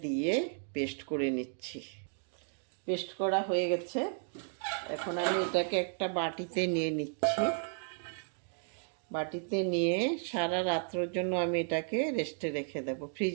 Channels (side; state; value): left; silent; 55 dB below the other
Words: দিয়ে পেস্ট করে নিচ্ছি। পেস্ট করা হয়ে গেছে। এখন আমি এটাকে একটা বাটিতে নিয়ে নিচ্ছি। বাটিতে নিয়ে সারা রাত্রের জন্য আমি এটাকে রেস্টে রেখে দেব।